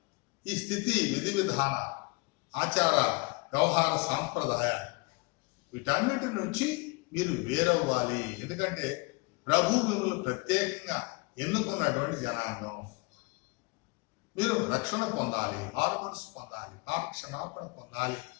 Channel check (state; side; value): quieter; right; 27.6 dB